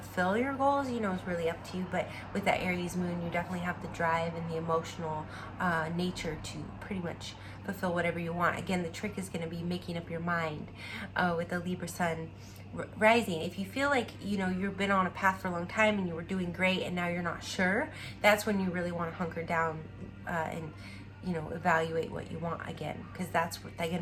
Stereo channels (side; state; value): both; identical; correlation 1.00